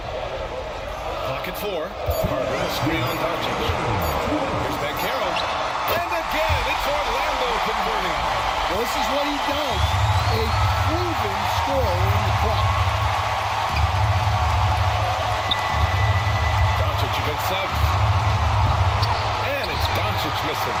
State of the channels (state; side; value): identical; both; correlation 1.00